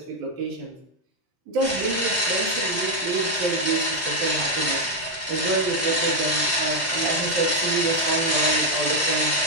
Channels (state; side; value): normal; both; correlation 0.02